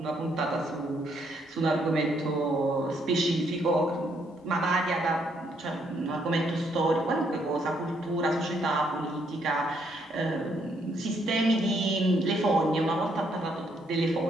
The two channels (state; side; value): normal; both; correlation 0.72